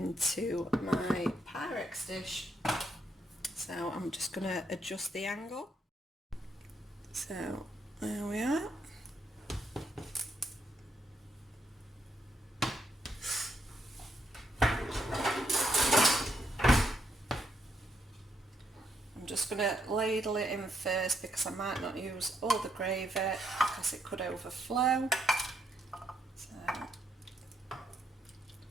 my pyrex dish. So I'm just going to adjust the angle. So there we are. I'm just going to ladle it in first because I might not use all the gravy because it could overflow. So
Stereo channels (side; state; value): both; normal; correlation 0.76